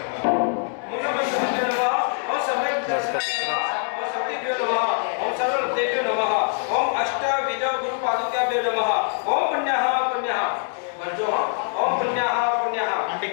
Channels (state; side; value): silent; right; 57 dB below the other